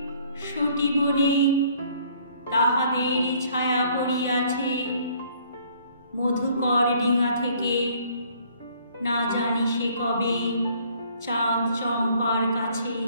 সতী বনে তাহাদের ছায়া পড়িয়াছে। মধুকর ডিঙা থেকে না জানি সে কবে চাঁদ চম্পার কাছে।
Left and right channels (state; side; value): inverted; both; correlation -0.60